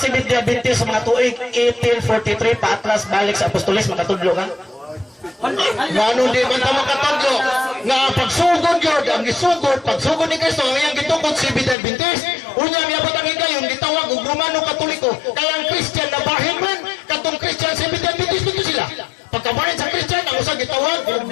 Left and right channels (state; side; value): drops out; right; at 11.8 s